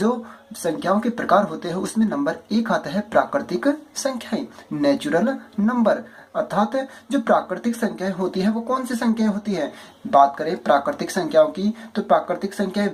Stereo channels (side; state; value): both; identical; correlation 1.00